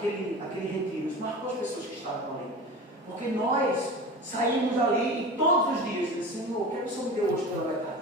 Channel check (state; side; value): normal; both; correlation 0.32